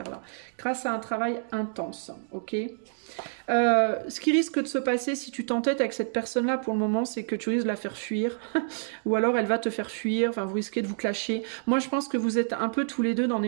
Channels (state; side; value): silent; left; digital silence